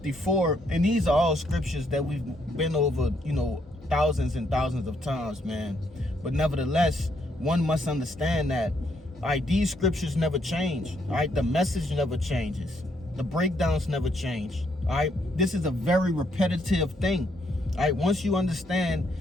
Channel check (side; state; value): both; normal; correlation 0.73